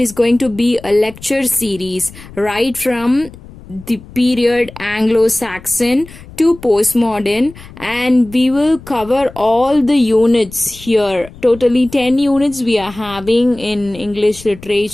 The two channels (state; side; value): noise; left; rumble, 19 dB below the sound